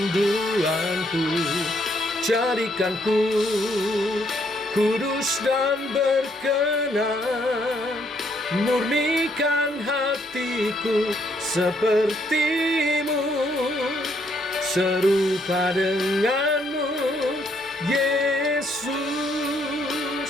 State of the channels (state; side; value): normal; both; correlation 0.71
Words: jadikan ku kudus dan berkenan, murnikan hatiku seperti-Mu, serupa dengan-Mu, Yesus.